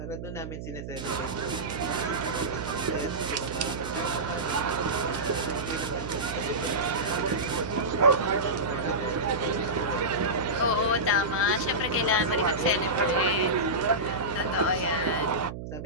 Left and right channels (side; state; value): right; noise; hum, 8 dB below the sound